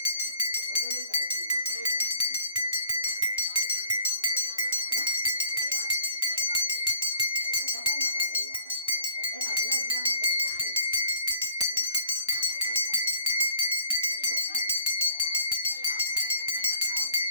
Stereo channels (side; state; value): both; inverted; correlation -0.60